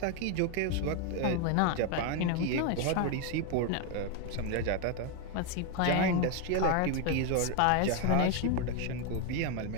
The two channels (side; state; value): both; different; correlation 0.01